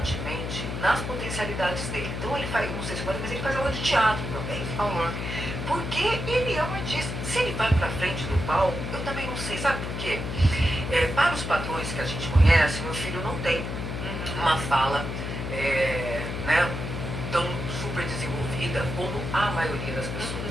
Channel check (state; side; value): noise; left; hum, 4 dB below the sound